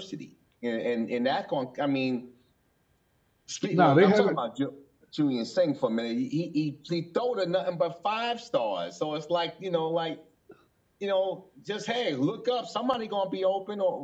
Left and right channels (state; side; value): identical; both; correlation 1.00